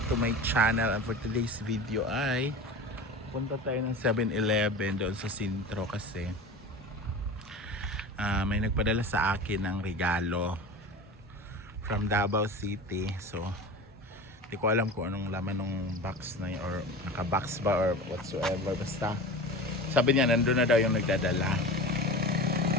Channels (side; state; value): both; normal; correlation 0.32